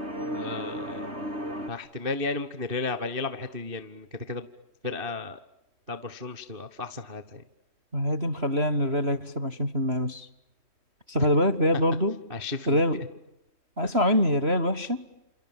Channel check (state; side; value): late; left; 3.0 ms